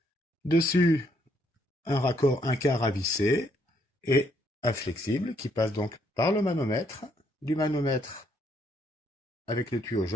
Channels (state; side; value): normal; both; correlation 0.71